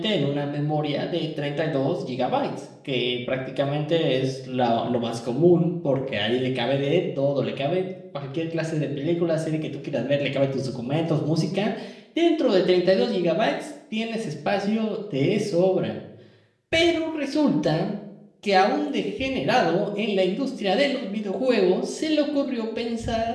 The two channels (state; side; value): identical; both; correlation 1.00